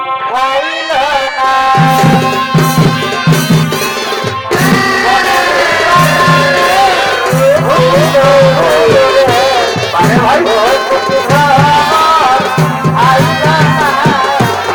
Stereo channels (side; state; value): both; identical; correlation 1.00